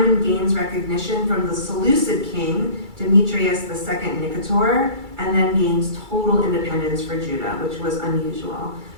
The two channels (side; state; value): left; late; 2.3 ms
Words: gains recognition from the Seleucid king, Demetrius II Nicator, and then gains total independence for Judah, which was unusual.